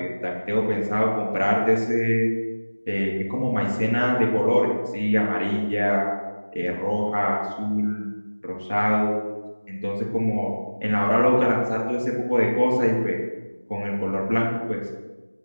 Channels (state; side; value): inverted; both; correlation -1.00